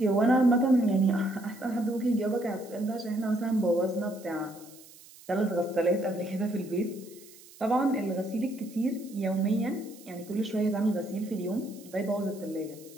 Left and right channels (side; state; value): right; noise; hiss, 22 dB below the sound